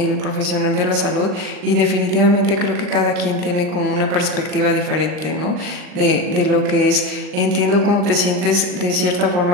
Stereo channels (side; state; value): left; late; 39 ms